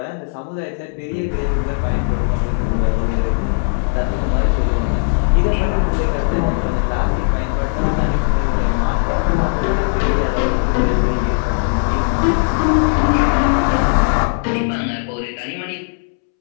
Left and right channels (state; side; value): silent; right; 67 dB below the other